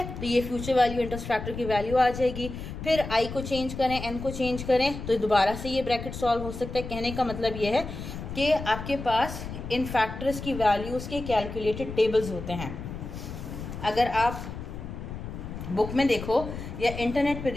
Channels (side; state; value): left; noise; rumble, 9 dB below the sound